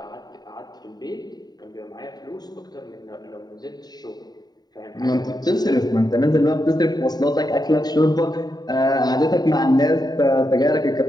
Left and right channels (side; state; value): right; late; 0.20 ms